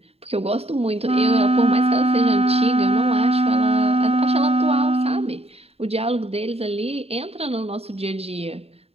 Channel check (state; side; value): late; left; 0.29 ms